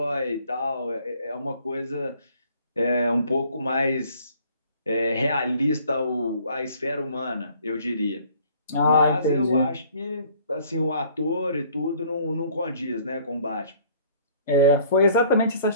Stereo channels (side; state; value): both; inverted; correlation -0.57